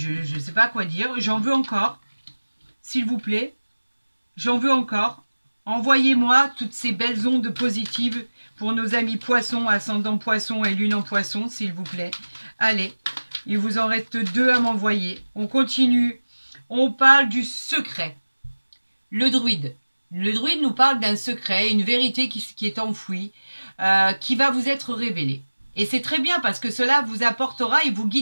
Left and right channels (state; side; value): inverted; both; correlation -1.00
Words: sais pas quoi dire, j'en veux encore. S'il vous plaît, j'en veux encore. Envoyez-moi toutes ces belles ondes positives pour nos amis poissons, ascendant poisson et lune en poisson, s'il vous plaît. Allez, il vous en reste 2 à m'envoyer. On continue. On parle du secret. Le druide. Le druide nous parle d'un secret, une vérité qui est enfouie, qui va vous être révélée. Et c'est très bien parce que cela vous apportera et vous